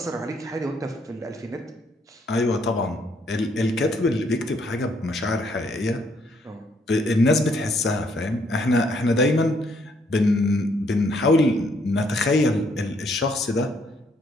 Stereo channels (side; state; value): both; normal; correlation 0.69